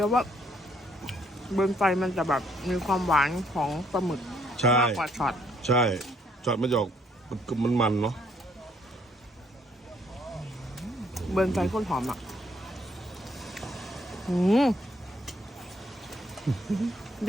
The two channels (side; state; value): both; normal; correlation 0.67